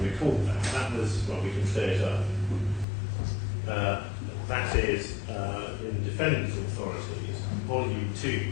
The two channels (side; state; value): right; drops out; at 2.9 s